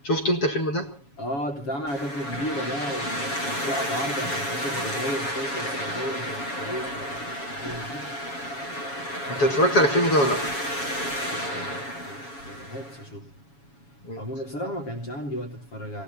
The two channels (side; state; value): right; late; 7.2 ms